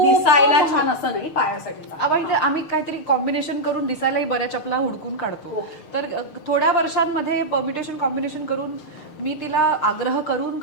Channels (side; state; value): right; late; 6.6 ms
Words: दिसायला छान असं नाही, पायासाठी चांगलं. आम्ही काहीतरी कॉम्बिनेशन करून दिसायलाही बऱ्या चपला हुडकून काढतो. तर थोड्या वर्षांमध्ये परम्युटेशन कॉम्बिनेशन करून मी तिला आग्रह करून